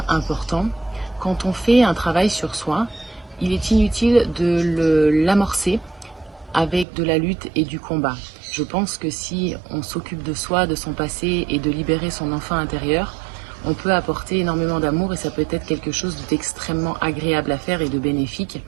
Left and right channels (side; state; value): left; drops out; at 6.9 s